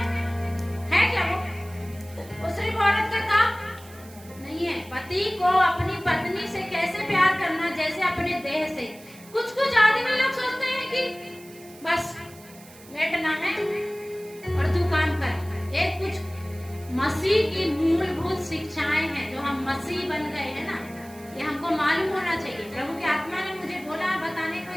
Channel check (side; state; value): right; noise; hiss, 21 dB below the sound